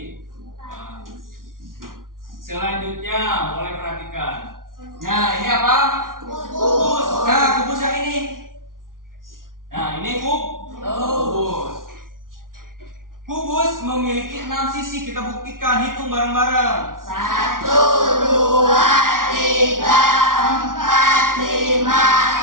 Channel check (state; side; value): late; left; 0.90 ms